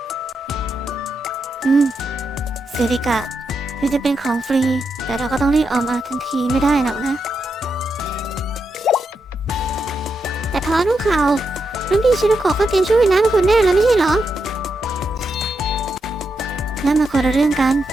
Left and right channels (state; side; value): normal; both; correlation 0.84